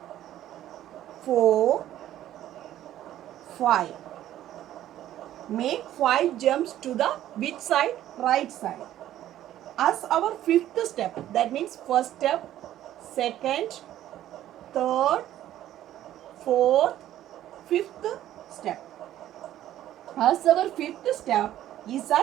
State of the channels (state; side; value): quieter; left; 12.7 dB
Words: 4, 5. Make 5 jumps to the which side? Right side. As our 5th step, that means first step, second, third, fourth, fifth step. As our fifth step is